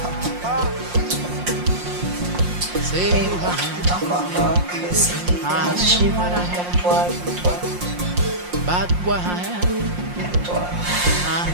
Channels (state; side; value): late; left; 5.6 ms